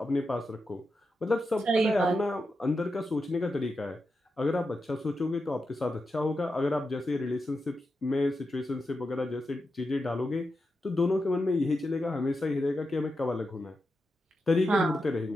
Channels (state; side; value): normal; both; correlation 0.88